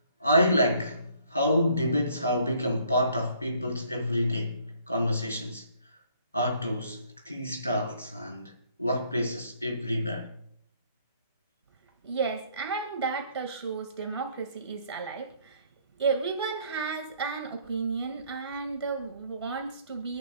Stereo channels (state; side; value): inverted; both; correlation -0.63